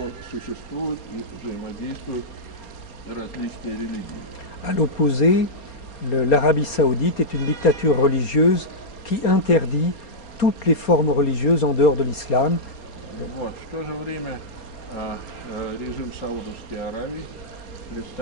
существуют и взаимодействуют различные религии. À l'opposé, l'Arabie saoudite est une dictature religieuse qui interdit toutes les formes religieuses en dehors de l'islam. Вот. В то же время режим Саудовской Аравии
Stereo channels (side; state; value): right; late; 4.3 ms